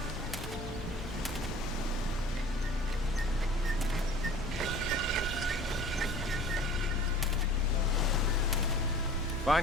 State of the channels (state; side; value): normal; both; correlation 0.45